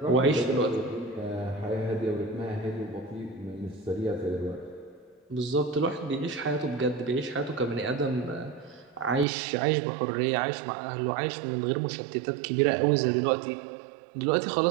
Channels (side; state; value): left; drops out; at 9.2 s